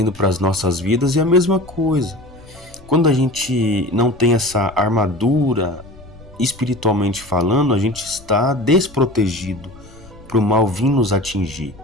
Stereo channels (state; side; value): noise; left; rumble, 22 dB below the sound